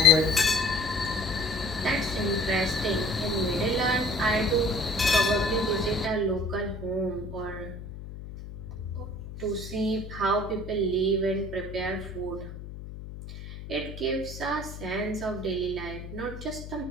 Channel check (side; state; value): left; noise; hum, 11 dB below the sound